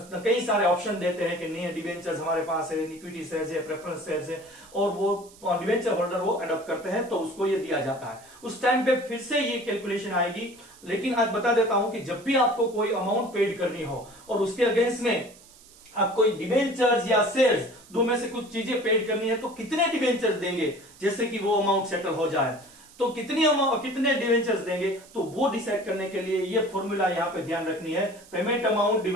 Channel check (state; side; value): noise; right; hiss, 23 dB below the sound